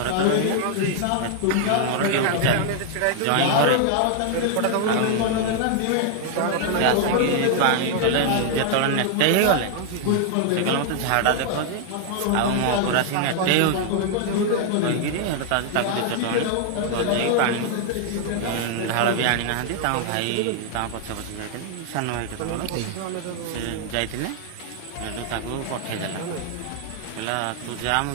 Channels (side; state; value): both; different; correlation 0.00